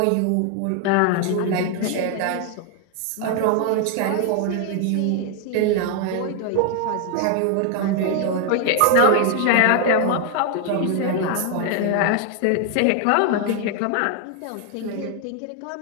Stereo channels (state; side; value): different; both; correlation 0.00